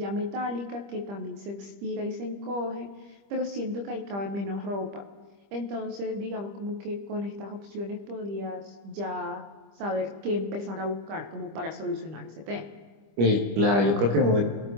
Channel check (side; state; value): left; late; 25 ms